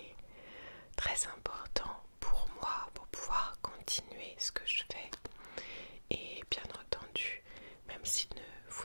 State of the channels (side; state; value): both; inverted; correlation -1.00